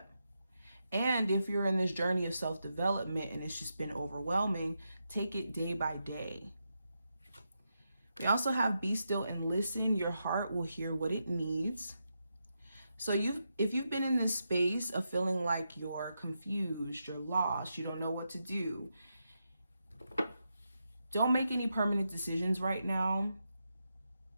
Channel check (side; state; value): both; inverted; correlation -0.85